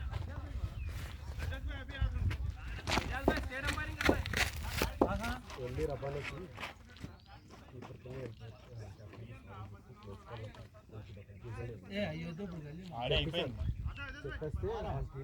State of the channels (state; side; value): identical; both; correlation 1.00